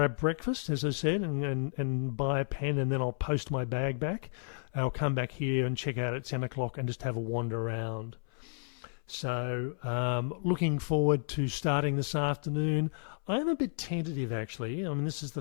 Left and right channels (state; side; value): silent; right; 56 dB below the other